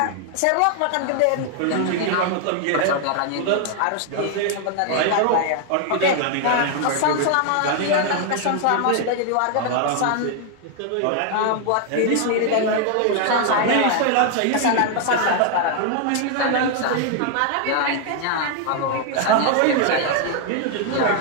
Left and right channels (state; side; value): different; both; correlation 0.00